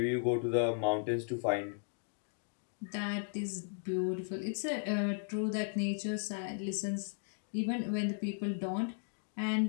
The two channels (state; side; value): silent; right; digital silence